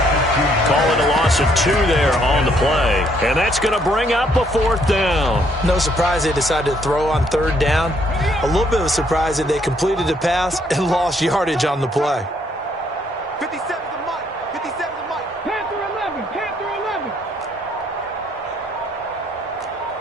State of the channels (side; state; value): both; normal; correlation 0.69